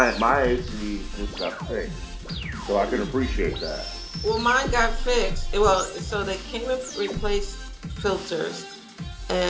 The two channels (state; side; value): identical; both; correlation 1.00